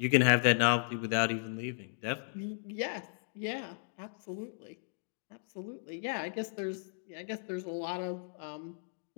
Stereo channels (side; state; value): right; silent; digital silence